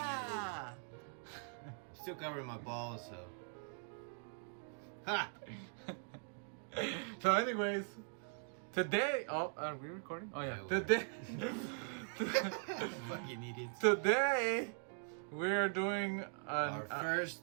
Still covering my balls, so. Ha! So anyways, today, are we recording? Oh yeah, Yeah, today, Fucking idiots. today we are doing Our first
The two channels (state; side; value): silent; left; 50 dB below the other